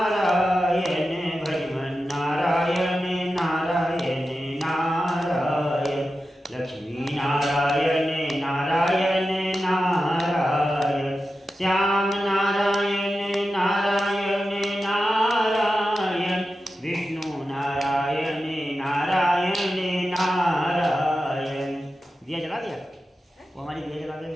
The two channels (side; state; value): both; normal; correlation 0.92